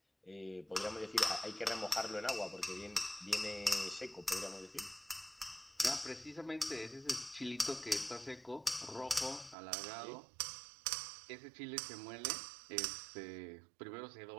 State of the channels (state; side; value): drops out; left; at 9.6 s